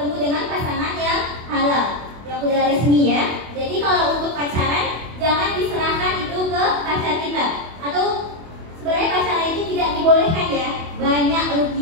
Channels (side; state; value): left; late; 24 ms